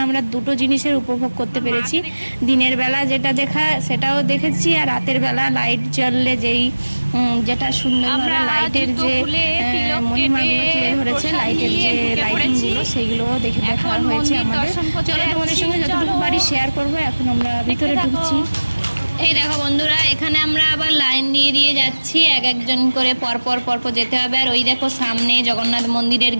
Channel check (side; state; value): both; inverted; correlation -1.00